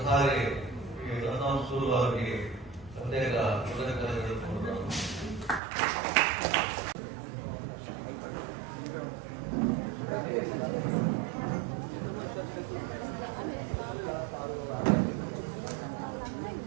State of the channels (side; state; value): left; drops out; at 5.6 s